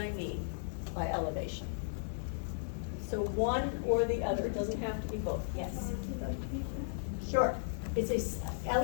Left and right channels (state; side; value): silent; right; digital silence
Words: mean by elevation. So one or the other, it doesn't have to be both, yes. Sure,